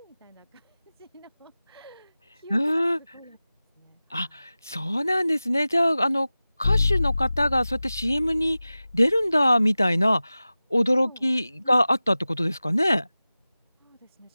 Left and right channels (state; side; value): inverted; both; correlation -0.97